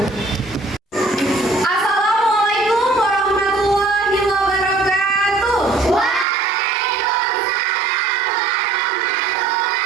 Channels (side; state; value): left; drops out; at 6.2 s